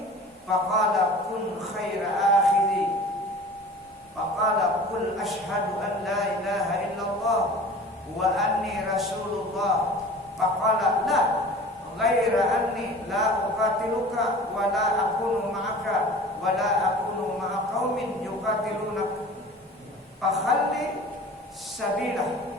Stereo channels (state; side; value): normal; both; correlation 0.42